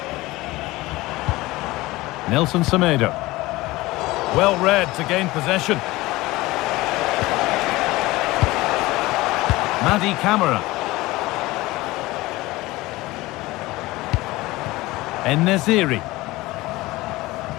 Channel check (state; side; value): quieter; right; 19.7 dB